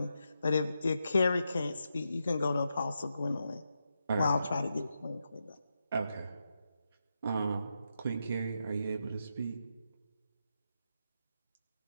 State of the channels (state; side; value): inverted; both; correlation -0.86